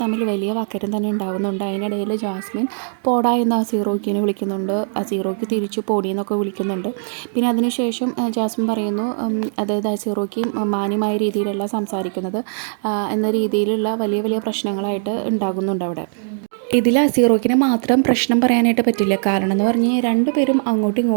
തമ്മിൽ വലിയ വാക്കേറ്റം തന്നെ ഉണ്ടാകുന്നുണ്ട്. അതിനിടയിൽ ജാസ്മിൻ പോടാ എന്ന് അസീറോക്കിനെ വിളിക്കുന്നുണ്ട്. അസീറോക്കി തിരിച്ചു പോടി എന്നൊക്കെ വിളിക്കുന്നുണ്ട്. പിന്നെ അതിനുശേഷം ജാസ്മിൻ പറയുന്നു, അതായത് അസീറോക്കി മാന്യമായ രീതിയിലല്ല സംസാരിക്കുന്നത് എന്ന രീതിയിലുള്ള വലിയ വലിയ പ്രശ്നങ്ങളായിട്ട് ഉണ്ടാകുന്നുണ്ട് അവിടെ. ഇതിൽ അസീറോക്കിനെ മാത്രം പ്രശ്നം പറയാനായിട്ട് പറ്റില്ല. കാരണം എന്ന് പറഞ്ഞ് രണ്ടുപേരും അങ്ങോട്ടും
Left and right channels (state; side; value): silent; left; digital silence